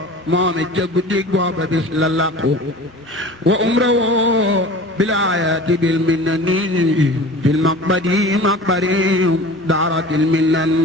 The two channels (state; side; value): normal; both; correlation 0.39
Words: moom it ca guddik booba bis la laqu wa umra woo bilaayati bil minnani fil maqbadi maqbari daaratil minnan